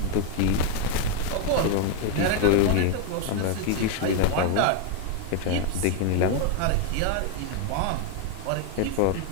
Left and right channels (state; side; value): different; both; correlation 0.01